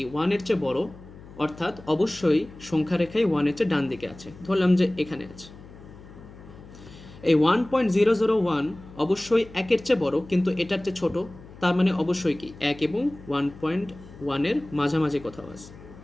1-এর চেয়ে বড়, অর্থাৎ অবশ্যই সংখ্যা রেখায় 1-এর চেয়ে ডান দিকে আছে। ধরলাম যে এখানে আছে। এই 1.001 অবশ্যই 1-এর চেয়ে বড়, কিন্তু এটার চেয়ে ছোট, তার মানে অবশ্যই কি 1 এবং 1.1-এর মাঝামাঝি কোথাও আছে।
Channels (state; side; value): noise; left; hum, 19 dB below the sound